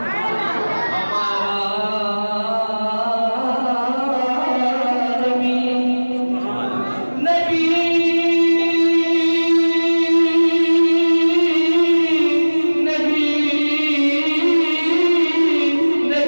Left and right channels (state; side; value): inverted; both; correlation -1.00